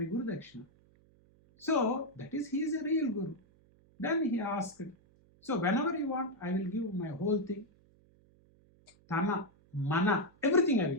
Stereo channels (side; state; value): right; noise; hum, 30 dB below the sound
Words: Guru Dakshina. So that is, he is a real Guru. Then he asked, so whenever you want, I will give my whole thing. Tana, Mana, everything I will